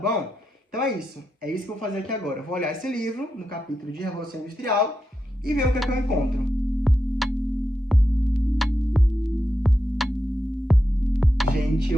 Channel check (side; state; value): both; normal; correlation 0.87